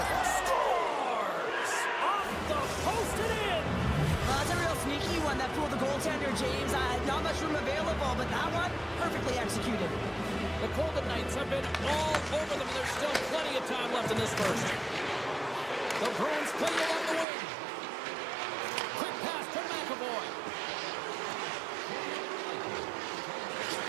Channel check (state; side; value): drops out; left; at 17.2 s